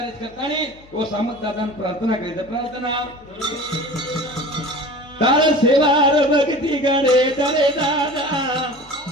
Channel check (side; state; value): left; noise; hum, 25 dB below the sound